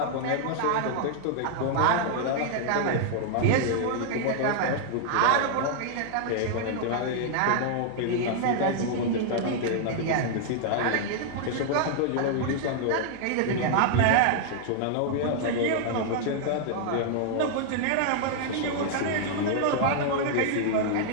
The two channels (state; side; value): different; both; correlation -0.01